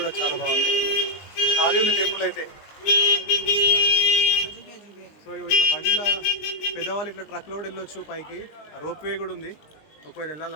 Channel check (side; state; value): right; late; 19 ms